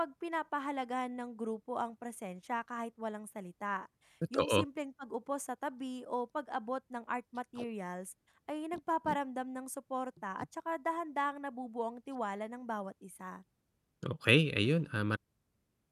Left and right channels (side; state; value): both; identical; correlation 1.00